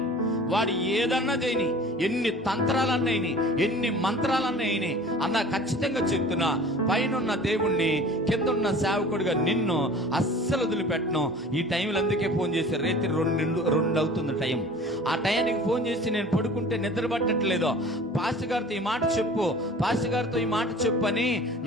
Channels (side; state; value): both; normal; correlation 0.44